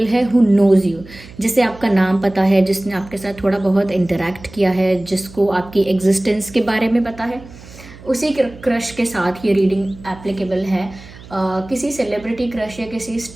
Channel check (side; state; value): right; noise; hum, 19 dB below the sound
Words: है हु नोज़ यू, जिसे आपका नाम पता है, जिसने आपके साथ थोड़ा बहुत इंटरेक्ट किया है, जिसको आपकी एग्जिस्टेंस के बारे में पता है, उसी क्रश के साथ ये रीडिंग एप्लीकेबल है। किसी सेलिब्रिटी क्रश या किसी